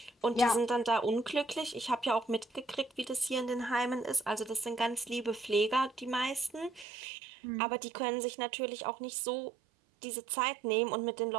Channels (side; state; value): left; drops out; at 6.9 s